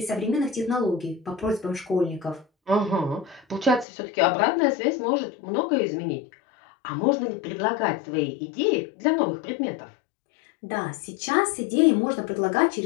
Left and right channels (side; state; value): right; drops out; at 3.9 s